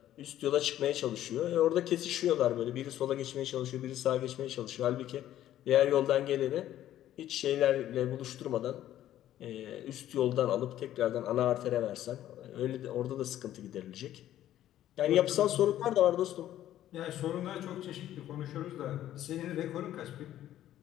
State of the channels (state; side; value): quieter; right; 12.5 dB